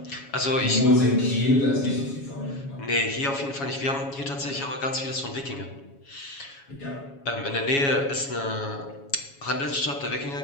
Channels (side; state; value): right; late; 7.2 ms